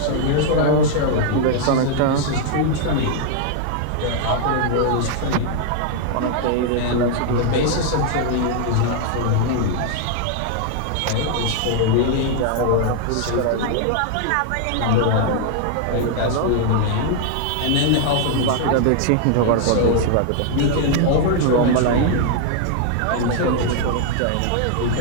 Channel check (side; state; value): both; different; correlation 0.00